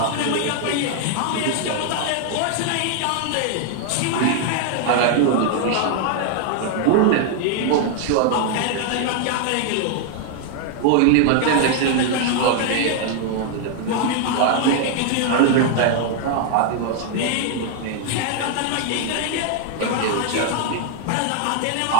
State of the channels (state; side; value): different; both; correlation 0.00